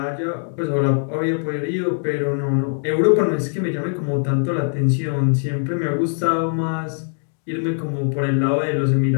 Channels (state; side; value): silent; right; digital silence